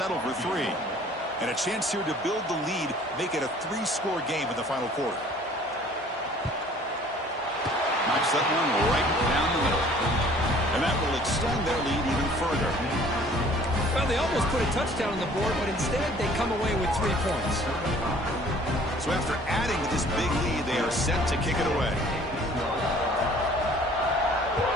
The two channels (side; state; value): both; normal; correlation 0.53